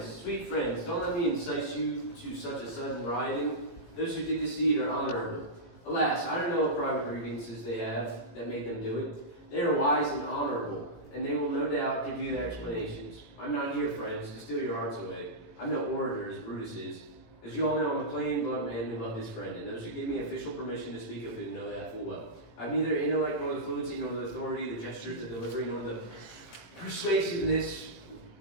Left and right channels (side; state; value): right; late; 18 ms